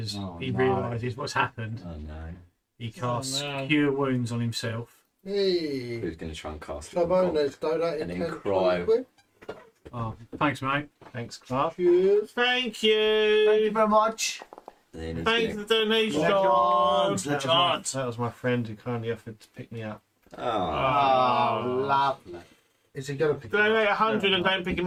he realises what's happened. Oh no. He casts Cure Wounds on himself. Hey. Who's going to try and cast it? Clabono's donated And then 10 cry. quid. Oh, thanks, mate. Thanks, Clark. Cheers. Thank you. Thank you very much. And then he's Thanks for the donation. That was my friend who kindly offered to pick me up. Oh, lovely. Is he going to pick Donate 100 and don't pick him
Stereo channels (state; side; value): identical; both; correlation 1.00